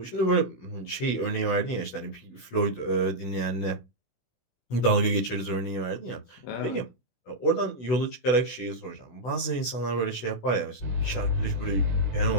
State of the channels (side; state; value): right; late; 16 ms